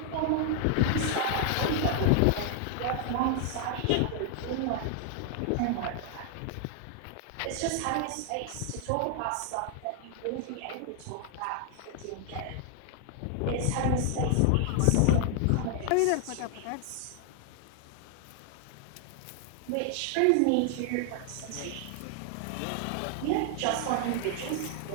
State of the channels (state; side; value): different; both; correlation 0.00